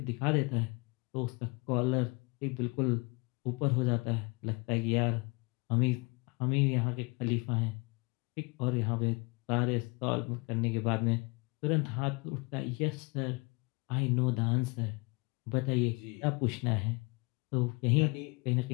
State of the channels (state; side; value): quieter; right; 29.7 dB